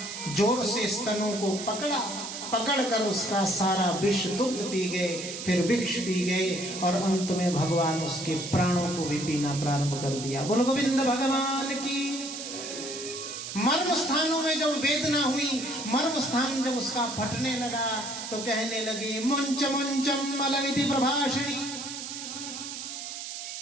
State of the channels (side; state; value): right; noise; hiss, 8 dB below the sound